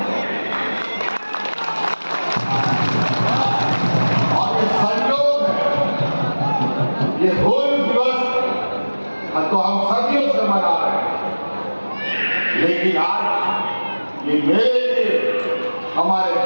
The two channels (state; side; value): inverted; both; correlation -1.00